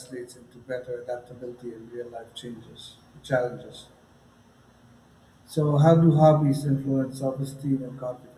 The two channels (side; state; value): both; identical; correlation 1.00